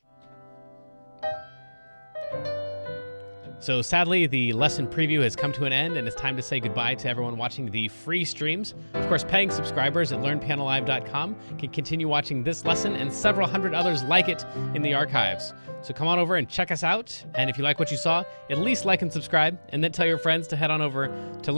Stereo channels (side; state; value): both; inverted; correlation -1.00